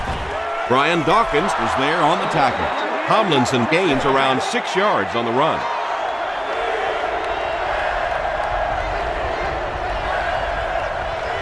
Brian Dawkins was there on the tackle. Tomlinson gains around 6 yards on the run.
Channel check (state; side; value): identical; both; correlation 1.00